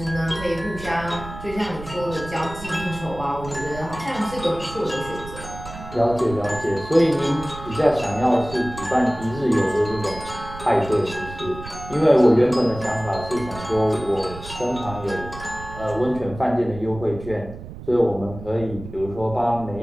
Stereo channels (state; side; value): noise; right; rumble, 13 dB below the sound